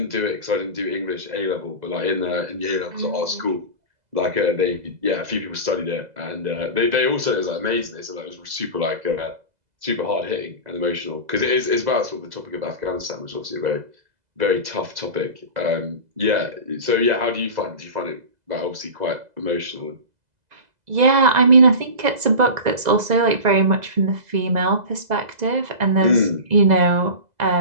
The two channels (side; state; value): left; late; 2.0 ms